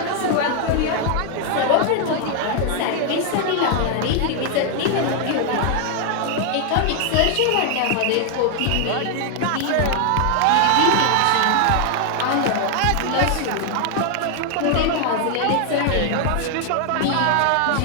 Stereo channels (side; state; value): both; different; correlation 0.00